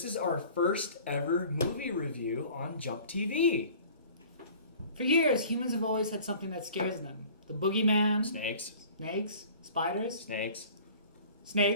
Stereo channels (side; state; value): both; inverted; correlation -0.47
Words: is our first ever movie review on JumpTV. For years, humans have always had something that scares them. The boogeyman. Snakes. Spiders.